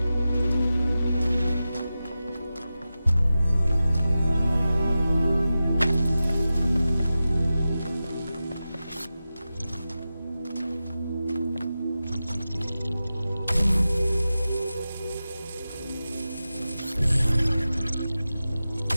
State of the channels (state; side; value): inverted; both; correlation -0.93